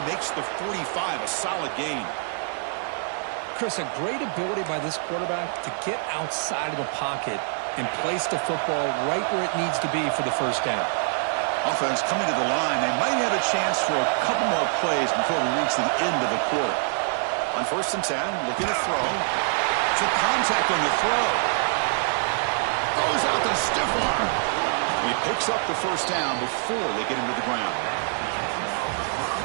makes the 45, a solid gain. Chris, a great ability by this quarterback to get outside of the pocket and place the football right where it needs to be for the first down. Offense coming to the line. They might have a chance for a couple more plays before we reach the end of the quarter. On 1st and 10, looking to throw. Took contact on the throw. Throws out the stiff arm. And he picks up the first down before they get him to the ground.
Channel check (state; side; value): silent; left; 62 dB below the other